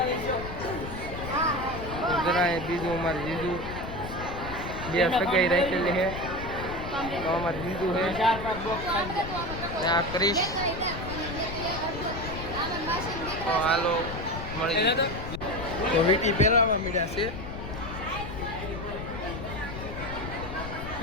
છો? જરા બીજું અમારે જીજુ બે સગાઈ રાખેલી છે. તો અમારે જીજુ છે. 4-5 બોક્સ ખાઈ ને આ ક્રિશ. તો હાલો મળી જાય. તો વીટી પહેરાવા મળ્યા છે.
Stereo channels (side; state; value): left; noise; rumble, 8 dB below the sound